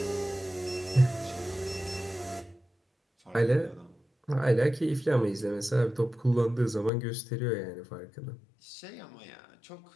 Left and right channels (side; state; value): right; drops out; at 6.9 s